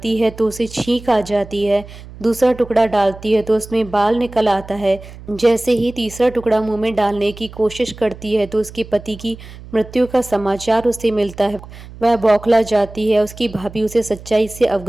है तो उसे छींक आ जाती है। दूसरा टुकड़ा डालती है तो उसमें बाल निकल आता है। जैसे ही तीसरा टुकड़ा मुंह में डालने की कोशिश करती है तो उसके पति की मृत्यु का समाचार उसे मिलता है। वह बौखला जाती है। उसकी भाभी उसे सच्चाई से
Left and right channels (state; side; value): noise; right; hum, 17 dB below the sound